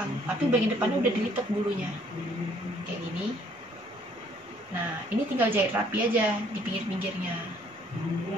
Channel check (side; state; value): both; normal; correlation 0.62